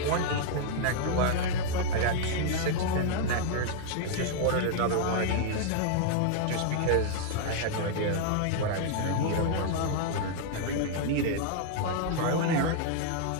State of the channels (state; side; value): different; both; correlation -0.01